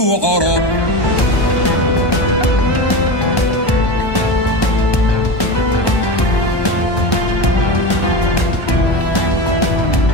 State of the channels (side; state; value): right; late; 1.2 ms